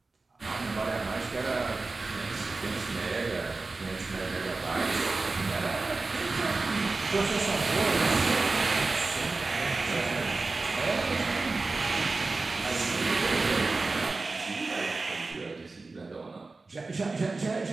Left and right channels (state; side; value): quieter; left; 3.6 dB